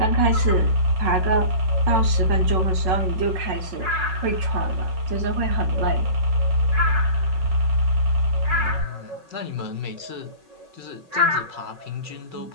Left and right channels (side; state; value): left; late; 5.4 ms